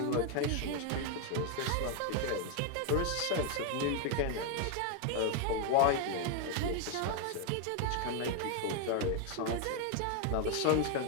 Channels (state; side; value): different; both; correlation 0.00